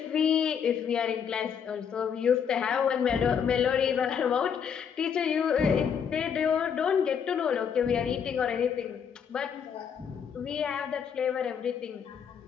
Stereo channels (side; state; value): right; quieter; 7.4 dB